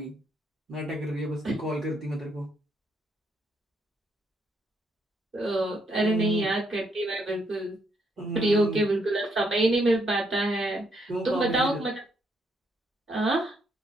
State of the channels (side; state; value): both; normal; correlation 0.74